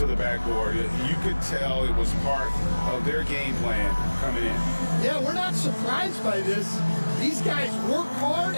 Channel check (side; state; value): both; inverted; correlation -1.00